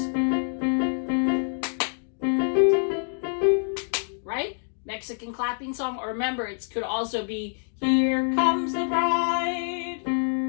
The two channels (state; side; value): silent; right; 61 dB below the other